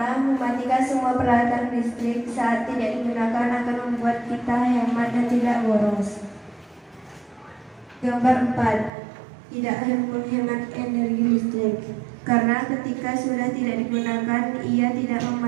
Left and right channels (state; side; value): drops out; left; at 8.9 s